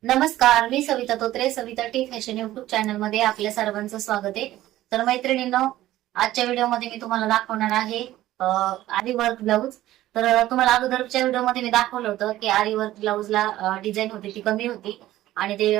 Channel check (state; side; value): quieter; left; 14.8 dB